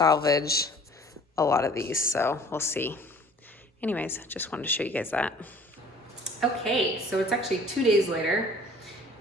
a lot of these, so we'll see. Anyways, just wanted to show you guys that. Okay, so it's actually 2 days later,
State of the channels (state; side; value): normal; both; correlation 0.51